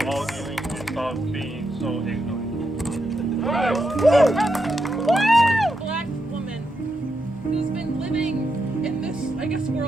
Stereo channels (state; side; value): normal; both; correlation 0.83